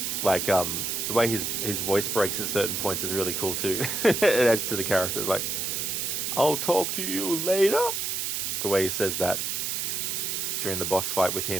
Like the way his voice breaks at certain points is really cool too. It adds to the character. Like, I'll talk to you later. The way he says that during the boss fight with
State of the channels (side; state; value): right; noise; hiss, 1 dB below the sound